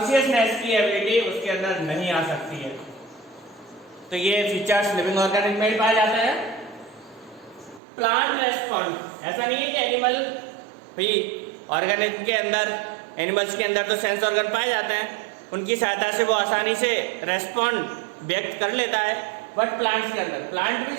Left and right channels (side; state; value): left; drops out; at 7.8 s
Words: की एबिलिटी उसके अंदर नहीं आ सकती है। तो ये फीचर्स लिविंग ऑर्गेनिज्म में ही पाए जाते हैं। प्लांट रेस्पॉन्ड, ऐसा नहीं है कि एनिमल भी ऑर्गेनिज्म के अंदर, एनिमल्स के अंदर तो सेंस ऑर्गन पाए जाते हैं, उनकी सहायता से वो आसानी से रेस्पॉन्ड व्यक्त कर लेता है। बट प्लांट्स के अंदर, प्लांट भी